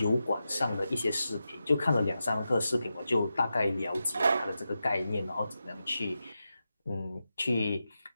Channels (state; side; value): inverted; both; correlation -0.90